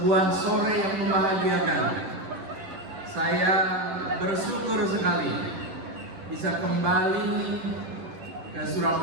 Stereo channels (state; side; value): late; left; 11 ms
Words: sore yang membahagiakan. Saya bersyukur sekali bisa kembali ke